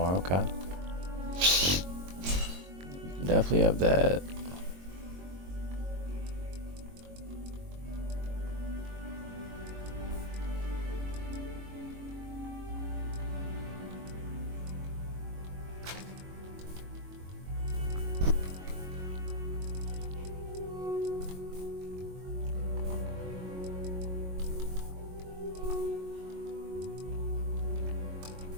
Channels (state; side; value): late; left; 22 ms